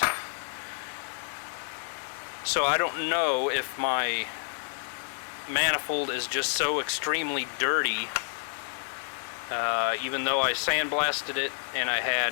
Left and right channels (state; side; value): silent; right; digital silence